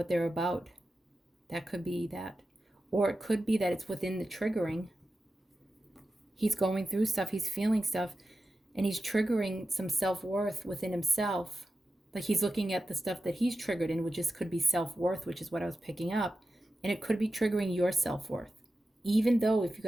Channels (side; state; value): both; normal; correlation 0.92